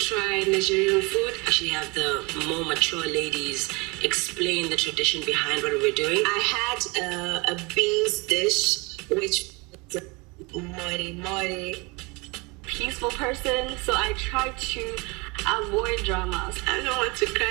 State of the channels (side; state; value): left; quieter; 27.1 dB